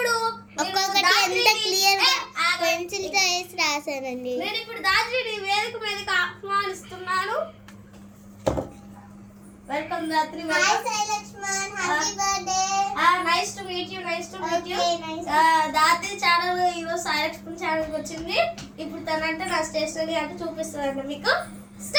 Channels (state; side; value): identical; both; correlation 1.00